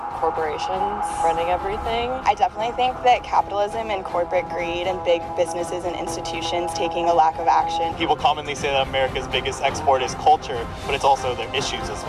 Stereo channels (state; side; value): identical; both; correlation 1.00